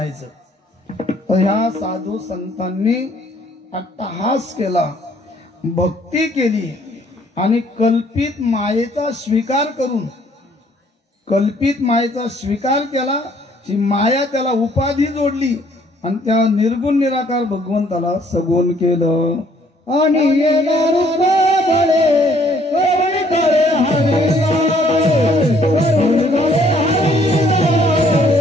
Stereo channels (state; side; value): normal; both; correlation 0.63